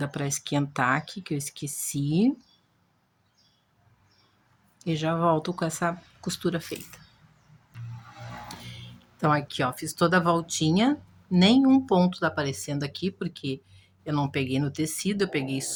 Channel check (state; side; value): identical; both; correlation 1.00